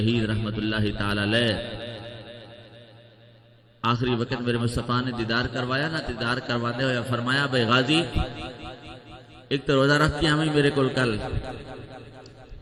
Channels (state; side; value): identical; both; correlation 1.00